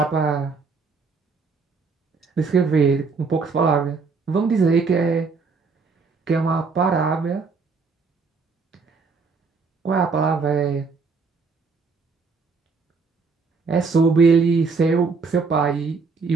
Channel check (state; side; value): quieter; left; 4.7 dB